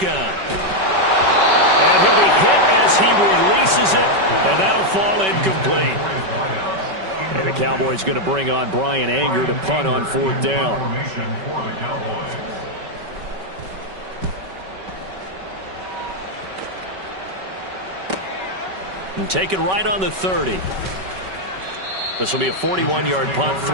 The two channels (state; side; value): late; left; 5.2 ms